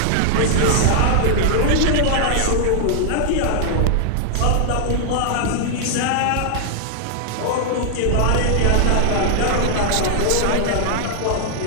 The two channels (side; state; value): both; different; correlation -0.01